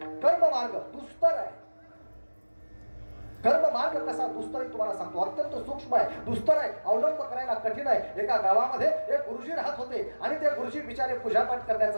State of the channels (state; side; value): inverted; both; correlation -1.00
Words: कर्म मार्ग दुस्तर आहे. कर्म मार्ग कसा दुस्तर आहे तुम्हाला सांगतो. अत्यंत सूक्ष्म आहे, दुस्तर आहे, अवलंब करायला कठीण आहे. एका गावामध्ये एक गुरुजी राहत होते आणि ते गुरुजी बिचारे पूजापाठ